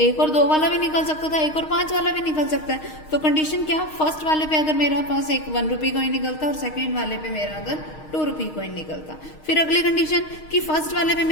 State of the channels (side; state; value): right; late; 6.4 ms